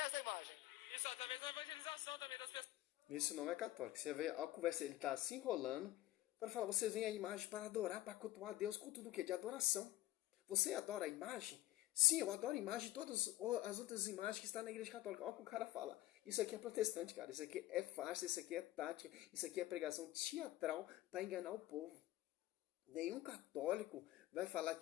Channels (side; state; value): right; quieter; 15.6 dB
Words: da imagem. Isso, através da evangelização também das pessoas. Isso não é católico. Você vê a conversa, ele está se enrolando para falar, vocês veem a imagem para adorar, para cultuar a Deus. Culto do quê? De adoração. Você adora a imagem? Sim, eu adoro a imagem de todas as outras imagens que estão na igreja católica. Olha o que o cara fala. Isso aqui é protestante, cara. Isso aqui é farsa, isso aqui é tática, isso aqui é pregação teatral para enganar o povo. Nenhum católico vai falar